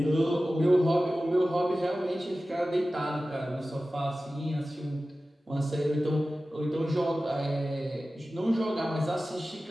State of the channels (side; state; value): both; normal; correlation 0.95